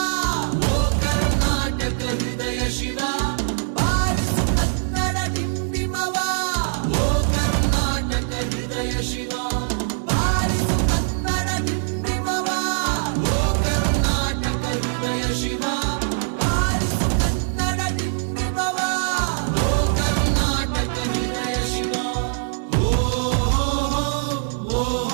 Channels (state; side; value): silent; left; digital silence